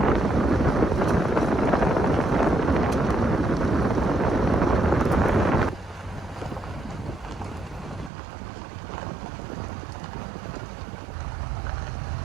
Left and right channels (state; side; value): drops out; left; at 8.1 s